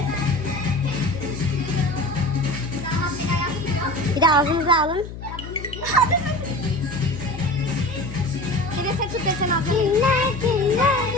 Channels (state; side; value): noise; left; hum, 11 dB below the sound